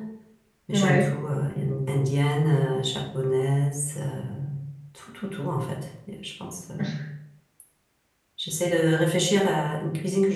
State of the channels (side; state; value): both; identical; correlation 1.00